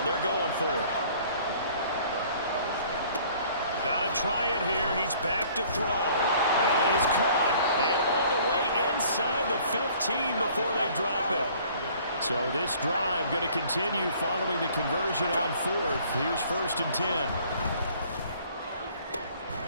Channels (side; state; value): both; inverted; correlation -0.55